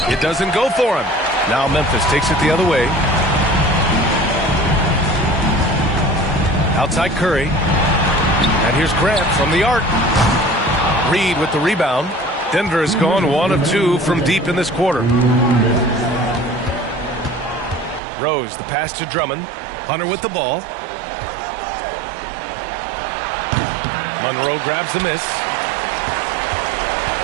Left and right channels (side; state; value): left; drops out; at 18.0 s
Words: It doesn't go for him. Now Memphis takes it the other way. Outside Curry. And here's Grant from the arc. Reed with the rebound. Denver has gone 1 of 2 from deep in this quarter. Rose, the pass to Drummond. Hunter with the ball. Monroe grabs the miss.